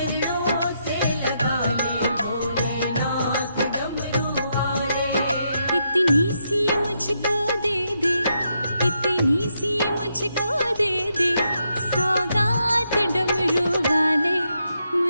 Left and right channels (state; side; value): inverted; both; correlation -0.80